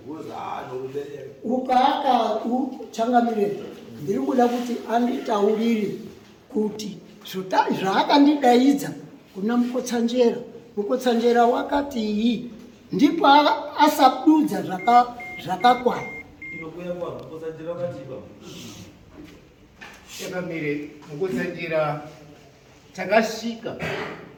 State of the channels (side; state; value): both; identical; correlation 1.00